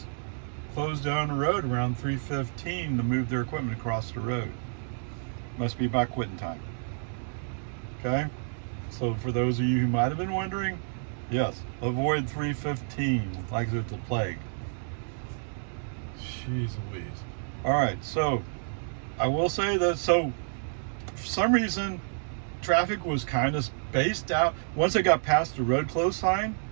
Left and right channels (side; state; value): left; silent; digital silence